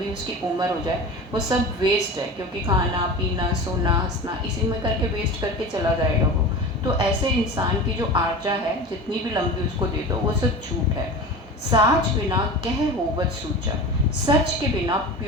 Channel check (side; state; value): both; normal; correlation 0.32